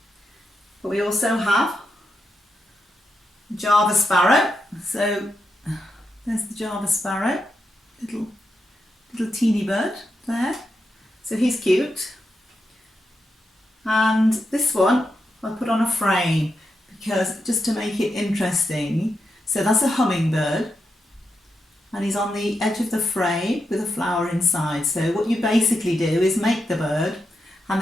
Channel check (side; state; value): both; normal; correlation 0.85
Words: But we also have Java sparrow. So there's the Java sparrow, little teeny bird there. So he's cute. And this one I put on a frame because just to make it interesting. So that's a hummingbird, and he's on the edge of the frame with a flower inside. So what you basically do is make the bird and